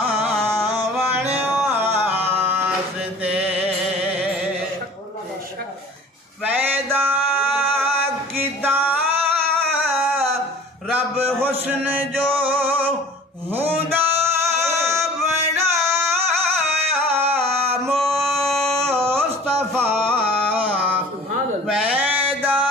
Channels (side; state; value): both; normal; correlation 0.45